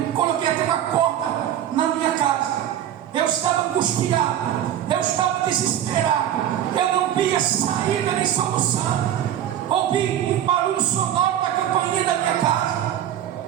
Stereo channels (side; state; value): left; quieter; 10.9 dB